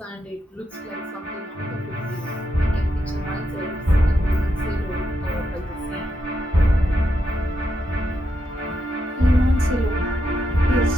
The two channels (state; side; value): normal; both; correlation 0.83